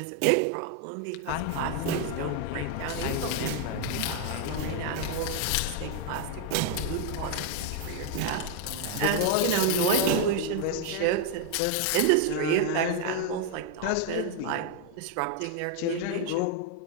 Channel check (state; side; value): different; both; correlation 0.00